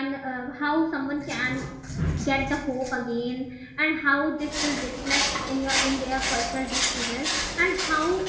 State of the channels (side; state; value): both; identical; correlation 1.00